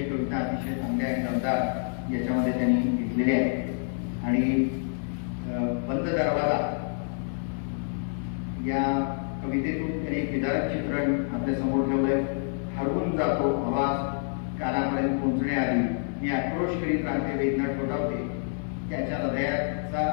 कविता अतिशय चांगल्या आणि दमदार याच्यामध्ये त्यांनी घेतलेल्या आहेत. आणि बंद दरवाजा या कवितेतून त्यांनी एक विदारक चित्रण आपल्या समोर ठेवलंय. हरवून जातो आवाज कानापर्यंत पोहोचण्याआधी, मी आक्रोश करीत राहते, वेदना ठोठावते, त्याच्या हृदयाचा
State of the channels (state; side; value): silent; right; 60 dB below the other